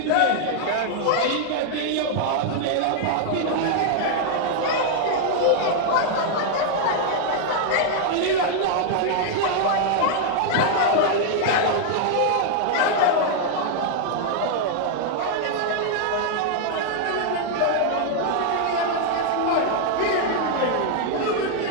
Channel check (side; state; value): both; different; correlation 0.00